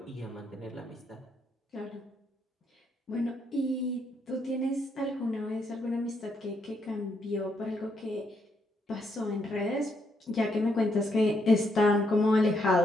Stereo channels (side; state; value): both; normal; correlation 0.76